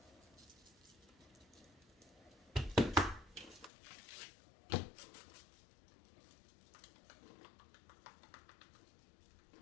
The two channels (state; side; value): drops out; right; at 3.7 s